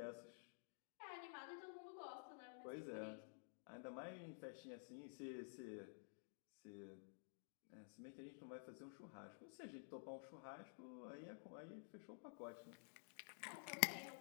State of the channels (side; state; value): right; silent; digital silence